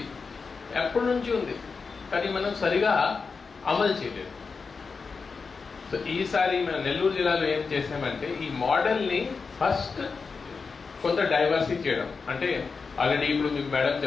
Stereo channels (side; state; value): right; quieter; 4.9 dB